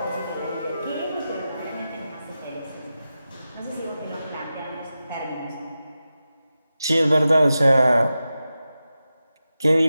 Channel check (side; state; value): both; inverted; correlation -0.92